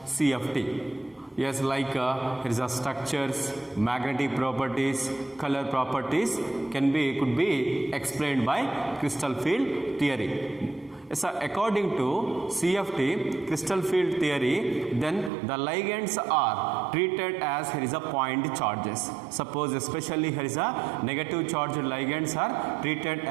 CFT. Yes, like here is a structures, magnetic properties, color properties could be explained by crystal field theory. So according to CFT, crystal field theory, then the ligands are treated as here is a point charges. Suppose especially here is a negative charged ligands are treated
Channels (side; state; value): left; drops out; at 15.3 s